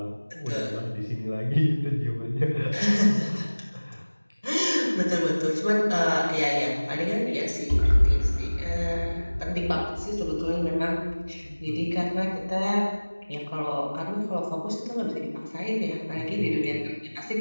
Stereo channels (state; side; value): inverted; both; correlation -1.00